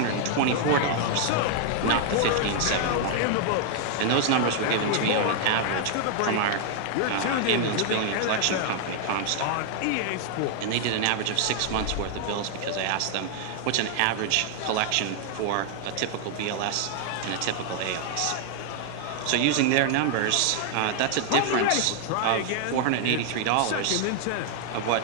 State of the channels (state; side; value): different; both; correlation 0.00